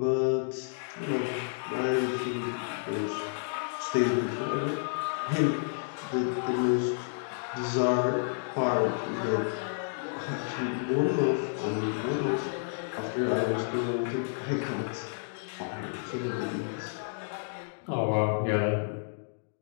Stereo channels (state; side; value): silent; right; digital silence